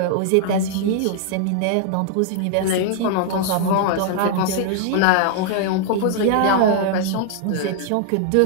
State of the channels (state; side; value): different; both; correlation 0.00